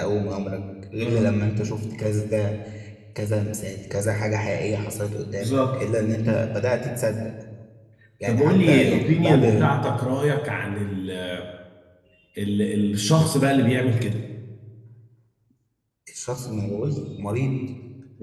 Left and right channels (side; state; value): both; identical; correlation 1.00